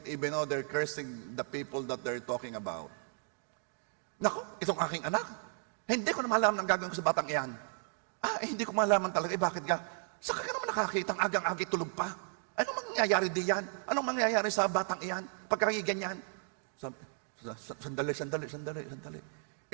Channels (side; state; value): left; silent; 55 dB below the other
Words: even know they're cursing the people that they're talking about. Naku, itong aking anak, hindi ko na malaman ang gagawin ko sa batang iyan. Hindi ko malaman talaga, bakit ka? Saka ka naman nakakita ang agang-agi tulog pa. Anong mangyayari diyan? Anong mangyayari sa batang iyan? Pagkakiganyan? Sandali.